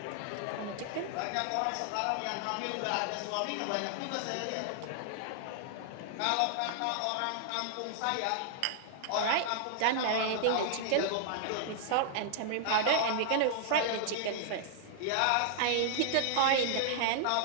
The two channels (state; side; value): different; both; correlation -0.01